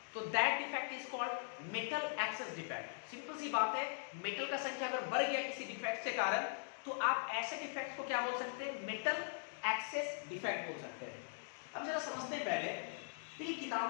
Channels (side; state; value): right; silent; digital silence